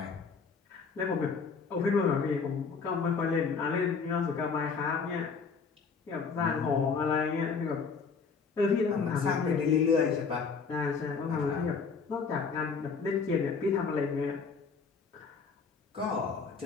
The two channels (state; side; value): quieter; right; 5.3 dB